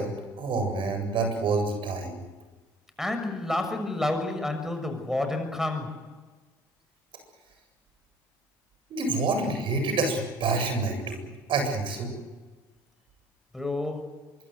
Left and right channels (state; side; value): normal; both; correlation 0.51